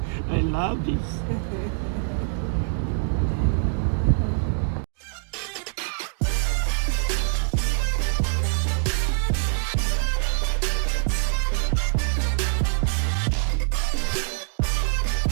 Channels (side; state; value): left; silent; digital silence